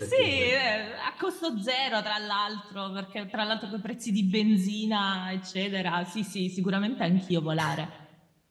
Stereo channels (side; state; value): both; identical; correlation 1.00